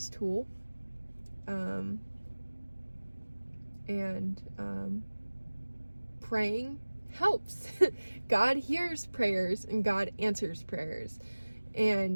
tool, and praying helps. God hears prayers, and God answers prayers,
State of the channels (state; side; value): inverted; both; correlation -1.00